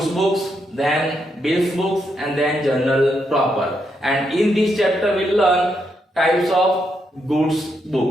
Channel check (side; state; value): both; normal; correlation 0.80